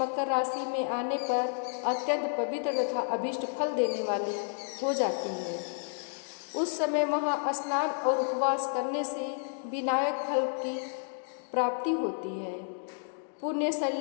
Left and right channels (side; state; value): right; silent; digital silence